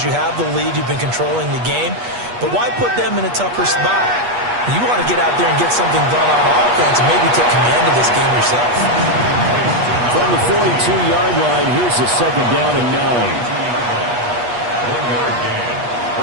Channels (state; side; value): late; left; 8.3 ms